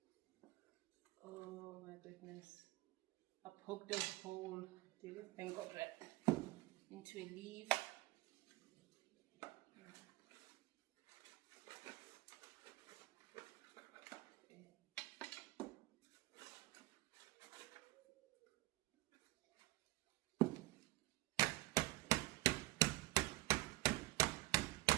Oh my goodness. I poked a hole, thank God, right into a leaf.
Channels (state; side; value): quieter; left; 20.0 dB